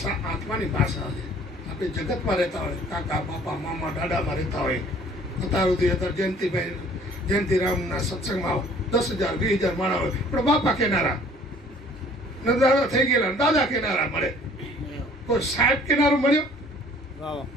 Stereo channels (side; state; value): both; normal; correlation 0.54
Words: આત્માની ભાષા છે. આપણે જગતમાં રહેતા હોય, કાકા બાપા મામા દાદામાં રહેતા હોય, અત્યારે જયંતિરામના સત્સંગમાં 10,000 20,000 માણા હોય, પણ બાપા કેનારા ને દાદા થઈ ગયેલા, દાદા કેનારા મળે. કોઈ સાહેબ કેનારો મળ્યો?